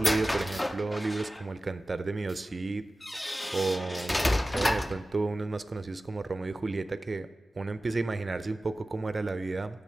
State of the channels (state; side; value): normal; both; correlation 0.96